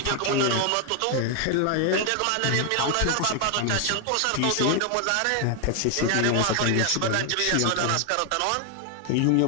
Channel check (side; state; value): both; different; correlation 0.00